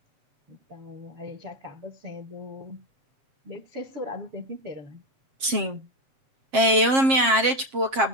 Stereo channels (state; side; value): late; left; 7.5 ms